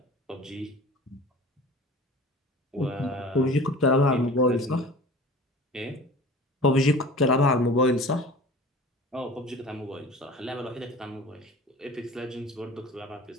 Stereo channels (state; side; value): normal; both; correlation 0.40